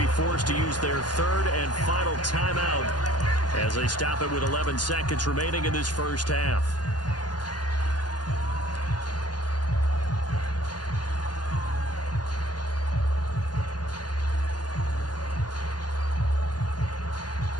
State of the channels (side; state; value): right; late; 0.69 ms